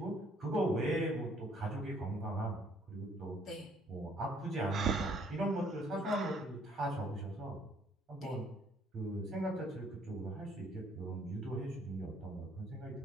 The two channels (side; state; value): both; normal; correlation 0.63